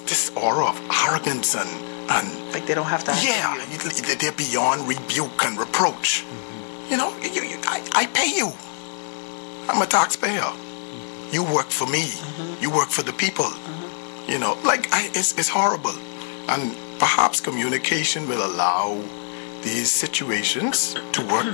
aura of arrogance and like they don't have to. They're beyond rebuke and reproach. You know, I pay you. I'm a taxpayer. You work for me. You work for the people. You know, like it's horrible. And perhaps communication will allow these situations to work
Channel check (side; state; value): right; silent; 59 dB below the other